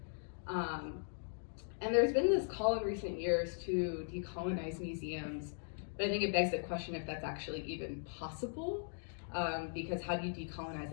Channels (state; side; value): silent; right; digital silence